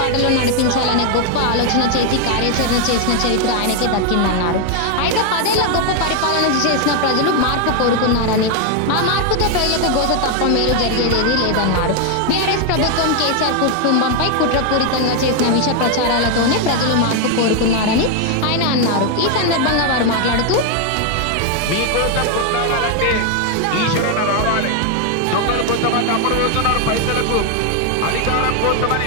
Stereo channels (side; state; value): both; different; correlation 0.01